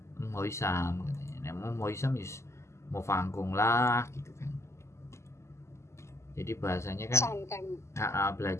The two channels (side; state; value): right; late; 0.13 ms